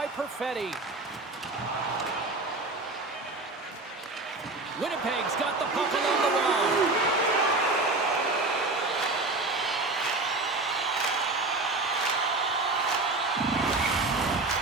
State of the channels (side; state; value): left; quieter; 3.2 dB